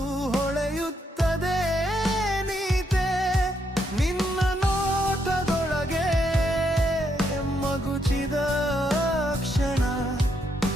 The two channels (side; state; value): both; normal; correlation 0.77